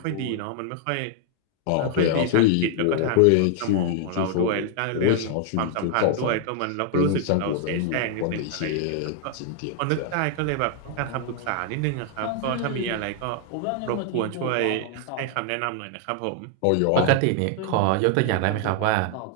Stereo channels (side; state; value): both; different; correlation 0.00